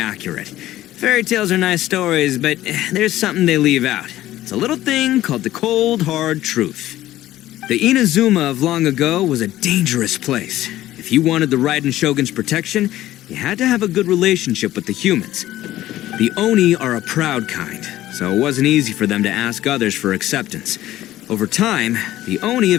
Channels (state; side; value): quieter; right; 14.6 dB